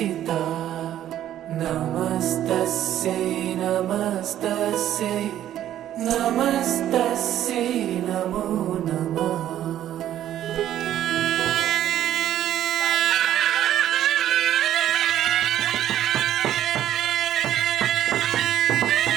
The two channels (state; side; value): quieter; left; 11.8 dB